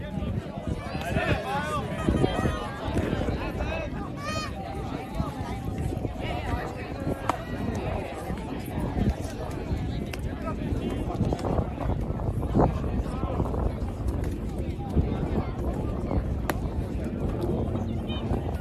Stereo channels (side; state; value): both; identical; correlation 1.00